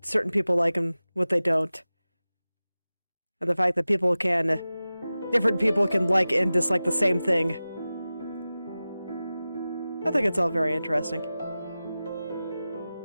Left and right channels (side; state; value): both; inverted; correlation -0.95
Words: certain people like and what they don't. And the fact that different people can like and dislike the same thing. I think it's all very interesting.